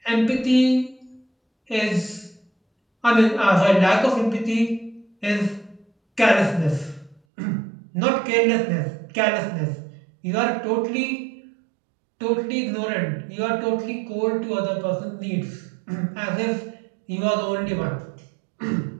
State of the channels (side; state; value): left; drops out; at 7.2 s